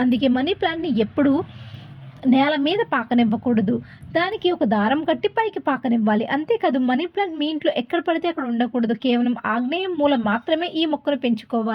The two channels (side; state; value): both; identical; correlation 1.00